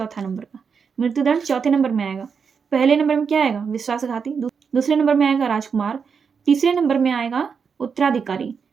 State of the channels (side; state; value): left; quieter; 6.1 dB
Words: नंबर का। मृत्युदंड 4थे नंबर में आएगा। पहले नंबर में क्या आएगा? विश्वासघाती। दूसरे नंबर में आएगा राजकुमार। तीसरे नंबर में आएगा उत्तराधिकारी